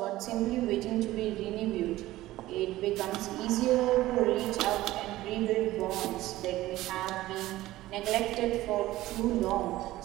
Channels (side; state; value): left; quieter; 16.4 dB